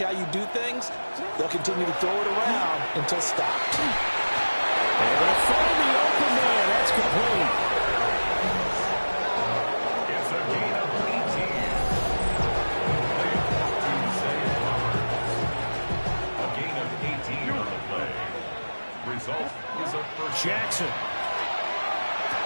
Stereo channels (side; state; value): both; inverted; correlation -1.00